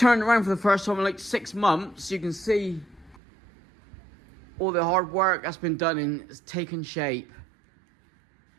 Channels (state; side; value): drops out; left; at 3.2 s